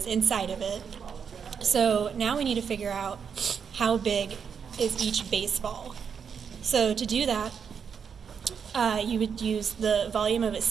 inside of it. So now we need to figure out how big is each baseball. So to do that, you would use the volume of a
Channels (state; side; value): quieter; left; 6.8 dB